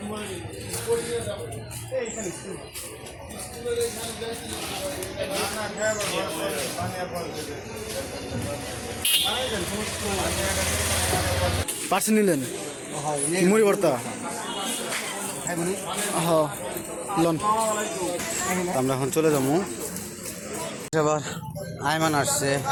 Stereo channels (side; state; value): both; identical; correlation 1.00